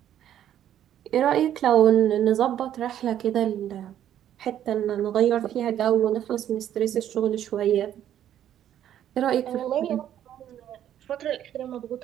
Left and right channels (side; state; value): left; quieter; 10.9 dB